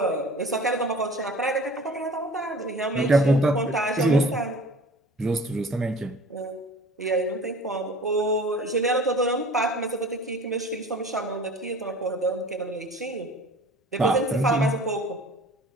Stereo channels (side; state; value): both; normal; correlation 0.45